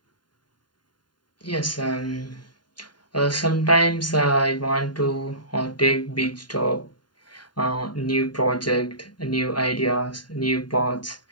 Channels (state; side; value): late; right; 0.71 ms